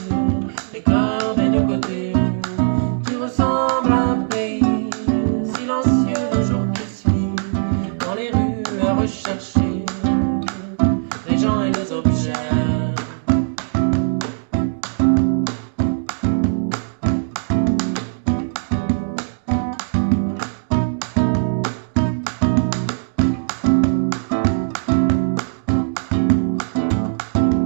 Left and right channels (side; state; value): left; silent; digital silence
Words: les cœurs des deux côtés. Tu ressembles à un pays silencieux le jour qui suit, dans les rues à rechercher les gens et les objets.